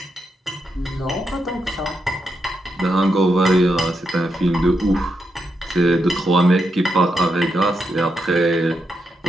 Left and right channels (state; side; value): normal; both; correlation 0.83